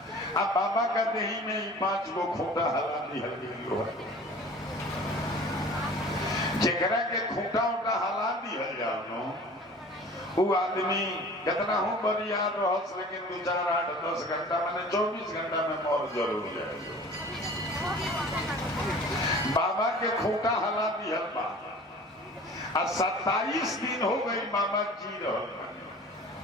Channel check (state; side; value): normal; both; correlation 0.44